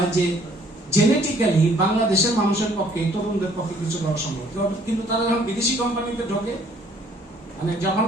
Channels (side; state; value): both; normal; correlation 0.60